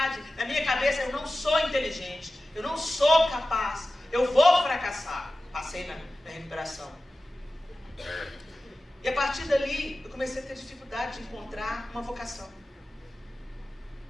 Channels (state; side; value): normal; both; correlation 0.95